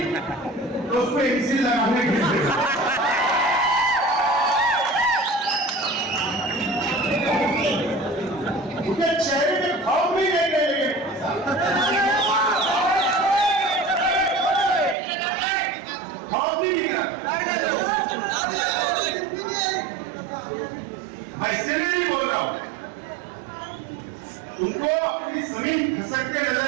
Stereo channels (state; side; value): drops out; left; at 15.0 s